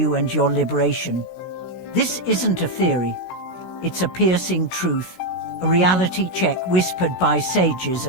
and your liberation? This isn't a theory. It's a piercing truth, a reality check whispered by sages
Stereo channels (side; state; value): right; late; 16 ms